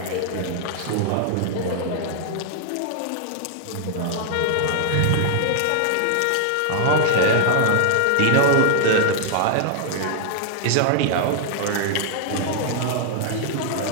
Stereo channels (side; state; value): both; different; correlation 0.00